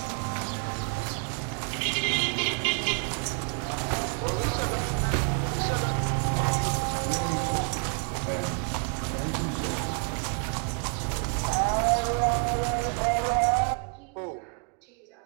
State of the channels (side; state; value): left; quieter; 40.0 dB